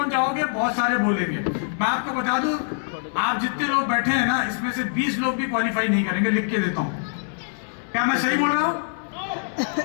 जाओगे, बहुत सारे बोलेंगे। मैं आपको बता दूं, आप जितने लोग बैठे हैं ना, इसमें से 20 लोग भी क्वालिफाई नहीं करेंगे, लिख के देता हूं। क्या मैं सही बोल रहा हूं?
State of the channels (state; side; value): silent; right; 61 dB below the other